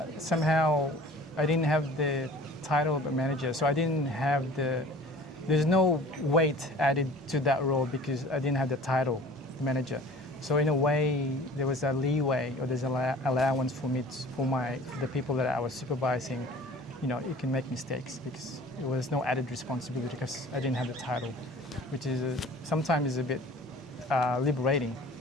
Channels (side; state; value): both; normal; correlation 0.45